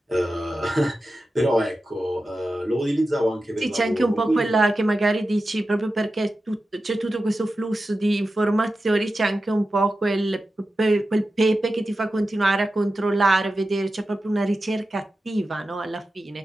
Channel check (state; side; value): normal; both; correlation 0.92